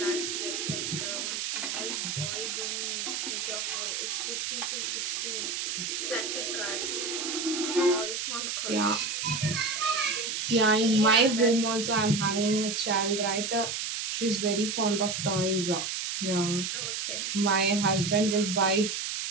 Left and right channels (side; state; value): right; noise; hiss, 3 dB below the sound